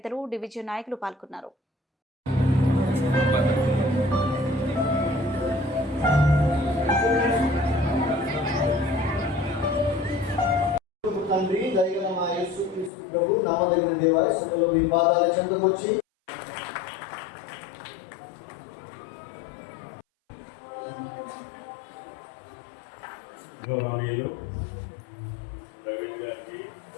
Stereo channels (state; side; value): drops out; right; at 12.9 s